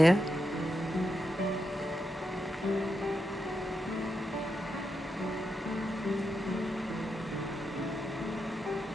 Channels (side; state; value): both; normal; correlation 0.85